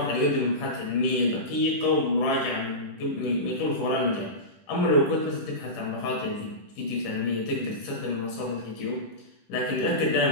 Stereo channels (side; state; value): right; late; 10 ms